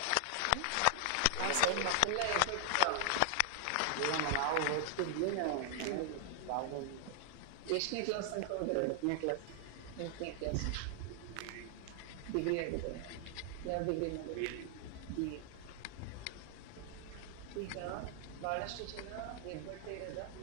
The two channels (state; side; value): different; both; correlation -0.01